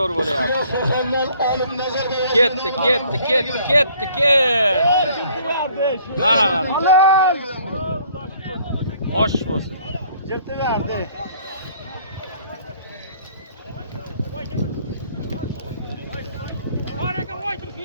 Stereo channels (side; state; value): both; inverted; correlation -0.59